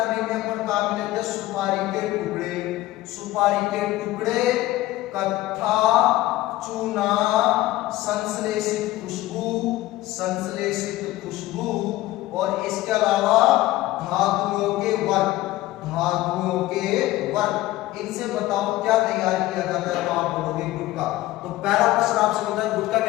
में अपन काम लेते हैं सुपारी के टुकड़े, सुपारी के टुकड़े, कत्था, चूना, संश्लेषित खुशबू, संश्लेषित खुशबू और इसके अलावा धातुओं के वर्ग, धातुओं के वर्ग। इनसे बताओ क्या तैयार किया जाता है? तो आप बोलोगे गुटखा। तो पहला प्रश्न आपसे होता है गुटखा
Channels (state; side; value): quieter; right; 16.8 dB